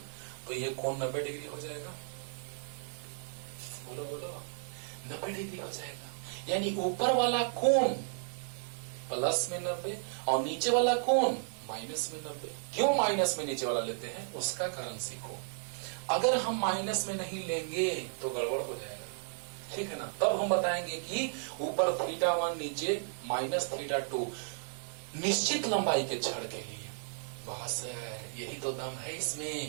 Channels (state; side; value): silent; left; 55 dB below the other